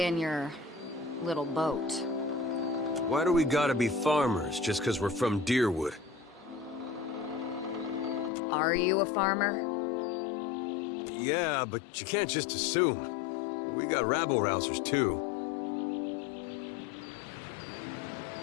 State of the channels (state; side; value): drops out; right; at 8.3 s